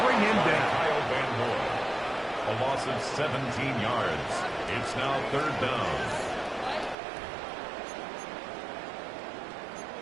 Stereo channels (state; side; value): drops out; left; at 7.0 s